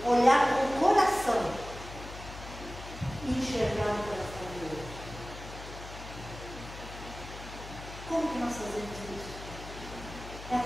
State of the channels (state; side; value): noise; left; hum, 13 dB below the sound